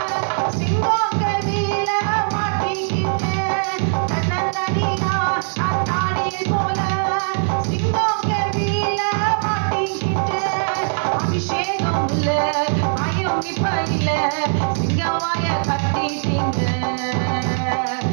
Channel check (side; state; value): left; silent; 65 dB below the other